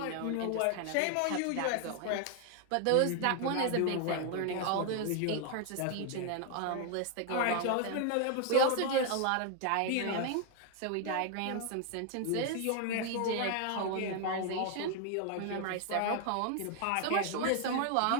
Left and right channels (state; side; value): different; both; correlation 0.00